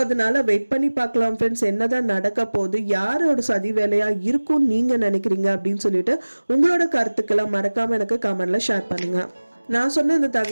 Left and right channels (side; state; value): both; inverted; correlation -1.00